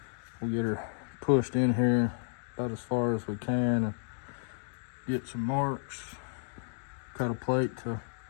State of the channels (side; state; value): right; silent; digital silence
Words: We'll get her pushed in here about as far as we can and get some marks. Cut a plate to